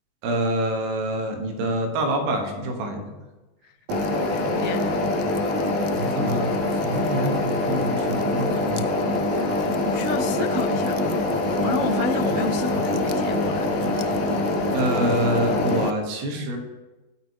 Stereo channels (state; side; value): late; left; 20 ms